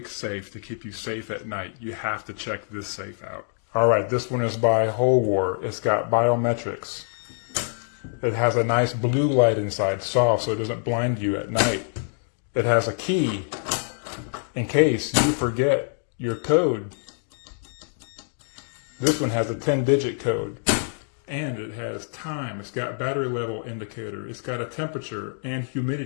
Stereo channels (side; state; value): right; silent; digital silence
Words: safe to keep you safe at night, you have to check this safe out. All right, this one is by HOLEWOR. It's got biometrics. It has a nice blue light inside, soft, so it doesn't blind you at night. It has a key in case you forget your code. This one has a 10-digit code. And it has time. It's got battery level indicator. It's got a temperature and